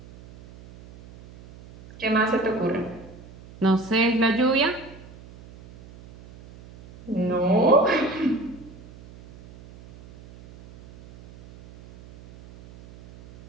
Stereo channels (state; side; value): noise; right; hum, 20 dB below the sound